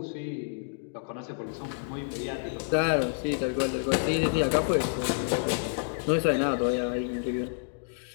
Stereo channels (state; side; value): silent; right; digital silence